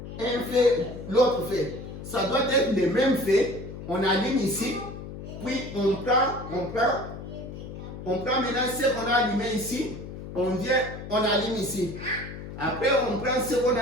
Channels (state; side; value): noise; left; hum, 11 dB below the sound